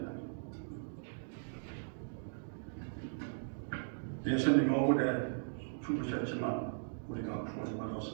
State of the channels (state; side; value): silent; left; digital silence